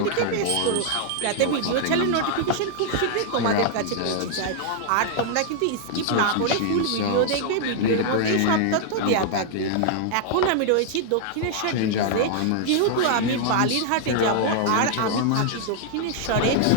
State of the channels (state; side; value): different; both; correlation -0.01